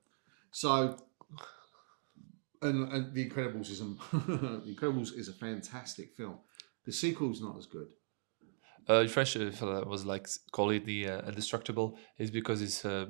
So, and The Incredibles is The Incredibles is a fantastic film. The sequel's not as good. In French, was like call it the Indestructible, is because it's the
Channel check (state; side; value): silent; left; digital silence